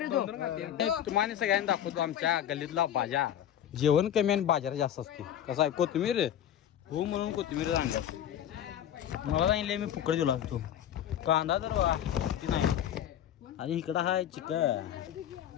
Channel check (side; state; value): right; quieter; 10.5 dB